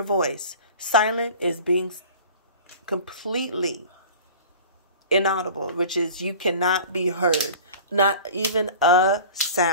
voice. Silent is being completely inaudible, which is you cannot be heard. Not even a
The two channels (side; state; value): both; inverted; correlation -0.40